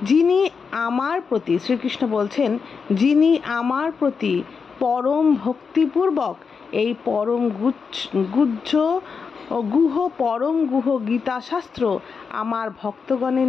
যিনি আমার প্রতি, শ্রীকৃষ্ণ বলছেন, যিনি আমার প্রতি পরম ভক্তিপূর্বক এই পরম গুহ গীতাশাস্ত্র আমার ভক্তগণের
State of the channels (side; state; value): right; quieter; 5.6 dB